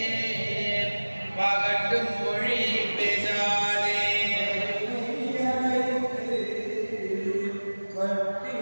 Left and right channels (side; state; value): both; inverted; correlation -1.00